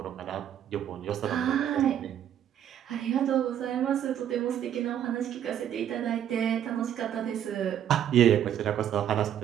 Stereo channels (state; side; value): quieter; left; 10.1 dB